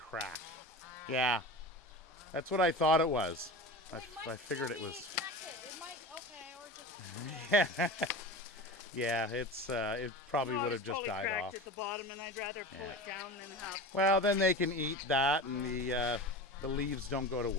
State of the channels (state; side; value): normal; both; correlation 0.31